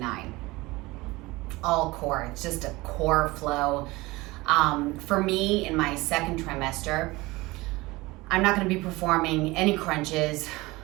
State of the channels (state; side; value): quieter; left; 21.4 dB